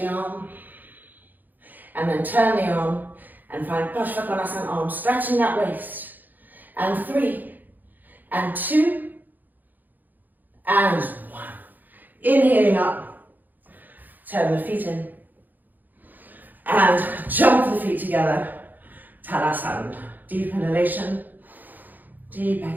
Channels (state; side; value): late; left; 0.085 ms